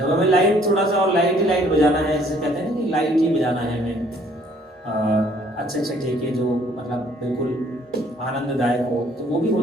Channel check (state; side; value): normal; both; correlation 0.61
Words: हमें लाइट थोड़ा सा और लाइट ही लाइट बजाना है, जैसे कहते हैं ना कि लाइट ही बजाना है हमें, अच्छे अच्छे ठेके जो मतलब बिल्कुल आनंददायक हो, तो वो भी